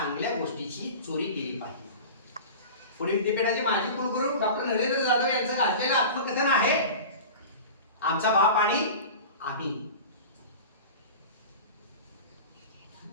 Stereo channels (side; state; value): both; inverted; correlation -0.34